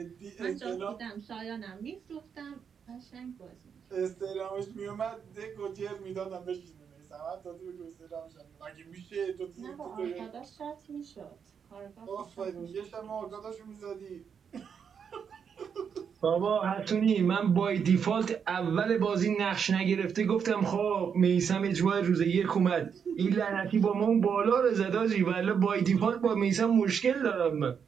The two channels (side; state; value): left; quieter; 7.0 dB